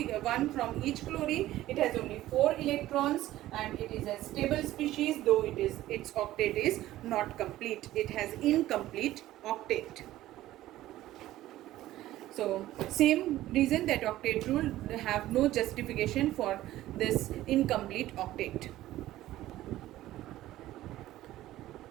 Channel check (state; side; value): quieter; left; 15.0 dB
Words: from each chlorine, it has only 4 electrons, and it is a stable species, though its octet is not complete. It has incomplete octet. So same reason that octet rule have no justification for this incomplete octet.